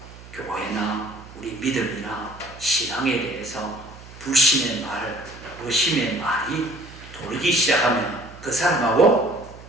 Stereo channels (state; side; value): noise; right; hum, 18 dB below the sound